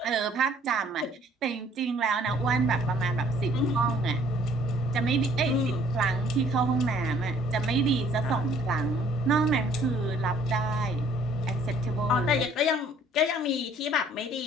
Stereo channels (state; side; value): normal; both; correlation 0.59